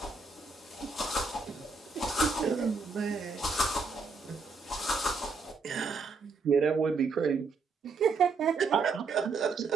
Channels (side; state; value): left; quieter; 4.3 dB